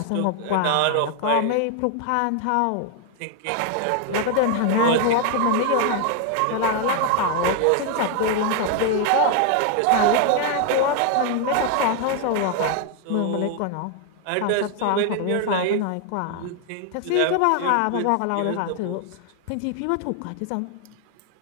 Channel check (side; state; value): both; different; correlation 0.00